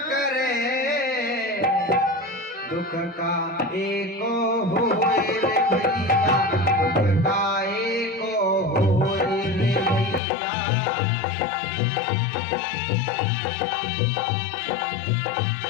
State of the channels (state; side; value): drops out; right; at 10.2 s